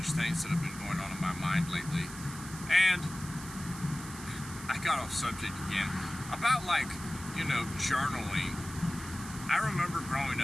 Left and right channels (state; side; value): noise; right; hiss, 13 dB below the sound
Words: things that have been going on in my mind lately. And I got off subject again. About, like, you know, journaling. I remember growing